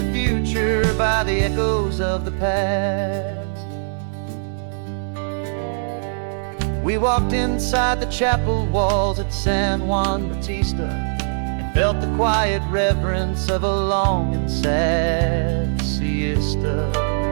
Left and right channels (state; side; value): silent; left; digital silence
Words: future by the echoes of the past. We walked inside the chapel walls at San Juan Bautista and felt the quiet reverence of a long and sad siesta.